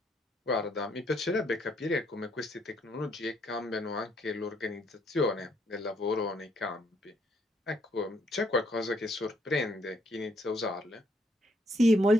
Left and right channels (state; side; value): normal; both; correlation 0.70